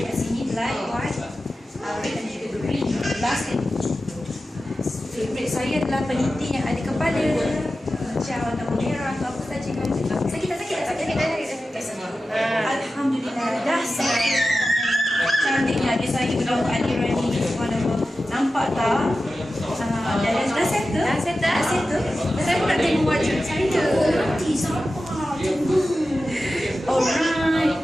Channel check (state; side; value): normal; both; correlation 0.93